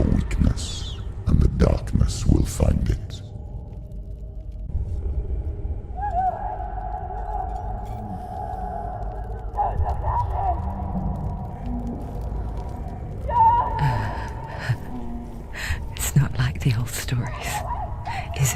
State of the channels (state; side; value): identical; both; correlation 1.00